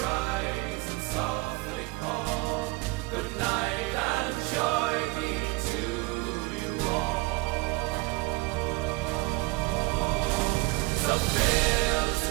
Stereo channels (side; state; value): left; quieter; 23.8 dB